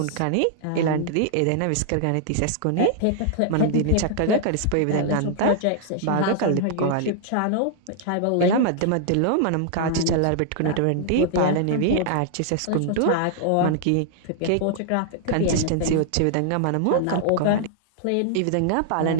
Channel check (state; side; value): different; both; correlation -0.01